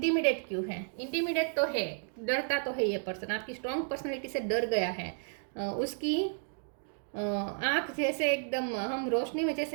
क्यों है? इंटिमिडेट तो है, डरता तो है ये पर्सन, आपकी स्ट्रॉन्ग पर्सनैलिटी से डर गया है। उसकी आँख जैसे एकदम, हम रोशनी में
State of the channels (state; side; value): silent; left; 56 dB below the other